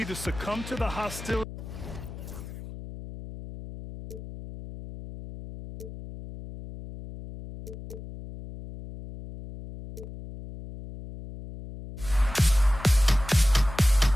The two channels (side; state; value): left; noise; hum, 12 dB below the sound